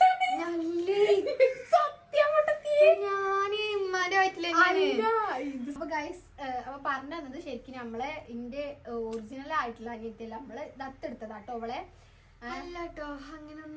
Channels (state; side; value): identical; both; correlation 1.00